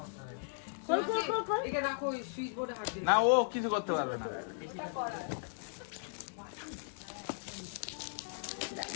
খোল খোল খোল খোল। একে রাখো, ওই সুইচ বোর্ডে হাত দিয়ে না ও কিছু করতে পারবে না।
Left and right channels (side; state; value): right; silent; digital silence